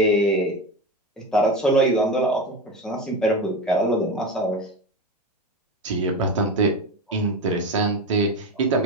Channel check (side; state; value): both; normal; correlation 0.22